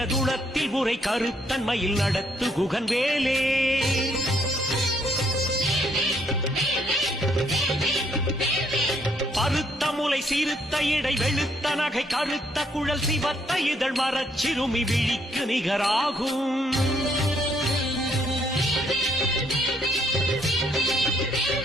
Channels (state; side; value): normal; both; correlation 0.70